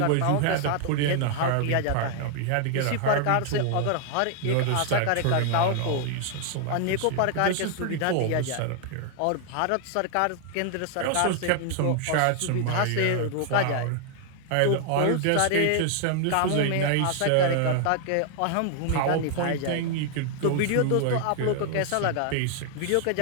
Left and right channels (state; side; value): different; both; correlation 0.00